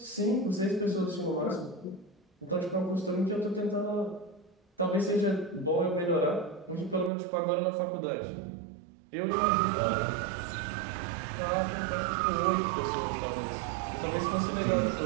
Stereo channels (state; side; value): drops out; left; at 7.1 s